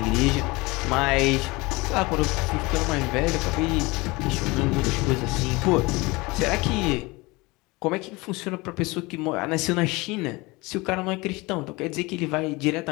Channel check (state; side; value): quieter; right; 23.6 dB